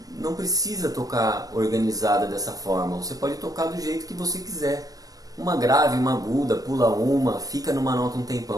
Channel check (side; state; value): left; late; 0.18 ms